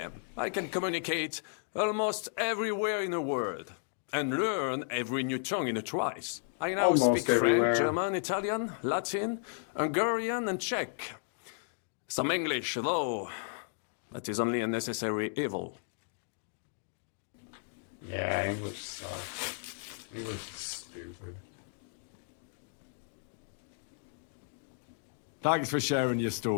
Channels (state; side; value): silent; right; digital silence